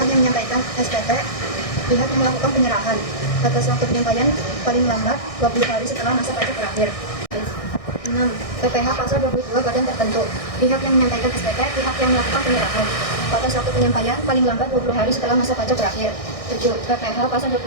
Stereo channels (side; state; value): right; late; 1.6 ms